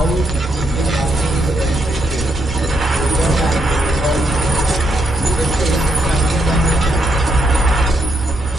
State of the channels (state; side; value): normal; both; correlation 0.79